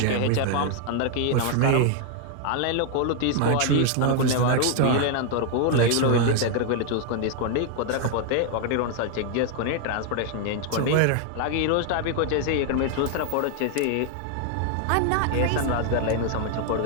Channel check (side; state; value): both; different; correlation 0.00